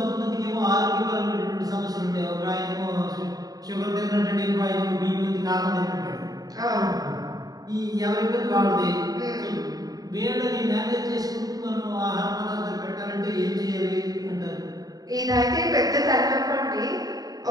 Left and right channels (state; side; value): late; left; 0.18 ms